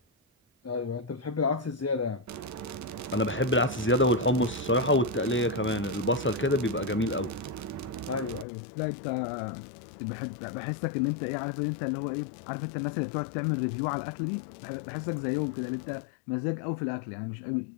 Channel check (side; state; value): right; drops out; at 8.5 s